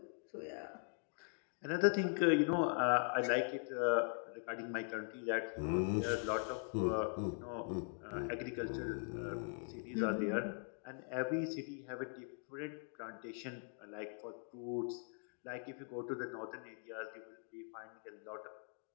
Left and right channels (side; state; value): right; silent; 50 dB below the other